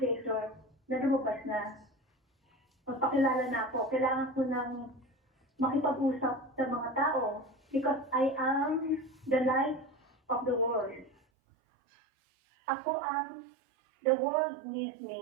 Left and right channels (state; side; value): drops out; left; at 11.2 s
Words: Creator, na lumabas na. Magpakilala na ako. Kailangan ko ng makipag-usap sa mga tao because I am the light of the world. Ako the world needs